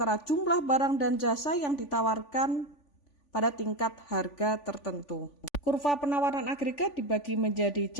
jumlah barang dan jasa yang ditawarkan pada tingkat harga tertentu. Kurva penawaran agregat dibagi menjadi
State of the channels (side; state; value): right; late; 3.5 ms